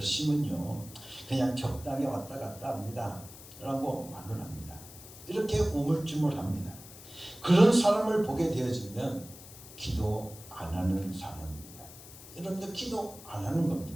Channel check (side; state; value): left; noise; hiss, 17 dB below the sound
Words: 그냥 적당히 왔다 갔다 합니다 라고 말을 합니다. 이렇게 우물쭈물합니다. 그런 사람을 보게 되어지면 기도 안 하는 사람입니다. 여러분들 기도 안 하는